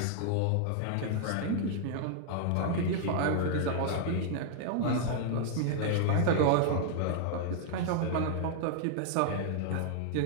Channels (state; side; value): different; both; correlation -0.01